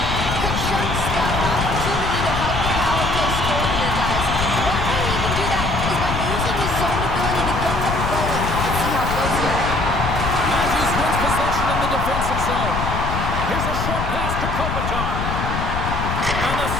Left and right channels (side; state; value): left; noise; rumble, 3 dB below the sound